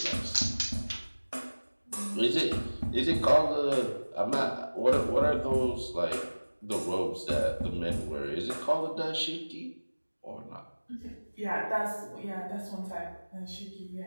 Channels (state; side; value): inverted; both; correlation -1.00